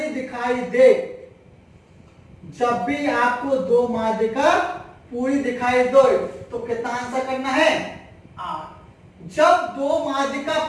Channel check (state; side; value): identical; both; correlation 1.00